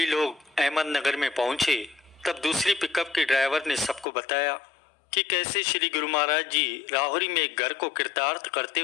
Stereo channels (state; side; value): drops out; right; at 4.0 s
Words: लोग अहमदनगर में पहुंचे तब दूसरी पिकअप के ड्राइवर ने सबको बताया कि कैसे श्री गुरु महाराज जी राहुरी में एक घर को कृतार्थ करते